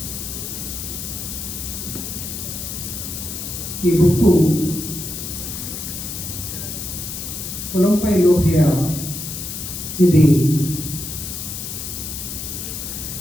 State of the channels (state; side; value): noise; left; hiss, 6 dB below the sound